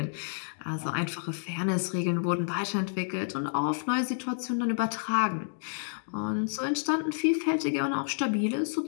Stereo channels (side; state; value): right; silent; digital silence